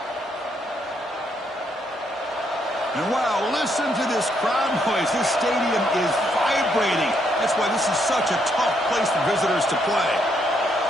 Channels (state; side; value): normal; both; correlation 0.74